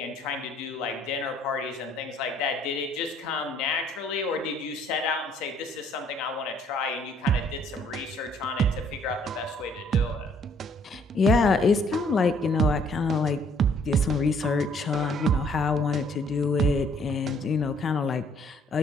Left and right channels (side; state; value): both; normal; correlation 0.63